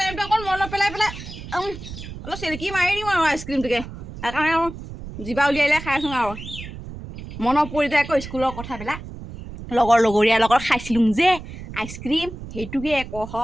অকণ মনত পেলাই অলপ চেলেকি মাৰি দিওঁ আৰু আইচক্ৰীমটোকে সেইকাৰণে আৰু জিভা উলিয়াই খাইছোঁ আৰু মনত পৰি যায় আকৌ স্কুলৰ কথাবিলাক লগৰীয়াৰ লগত খাইছিলোঁ যে আইচক্ৰীম সেইটোকে আকৌ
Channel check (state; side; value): noise; right; rumble, 12 dB below the sound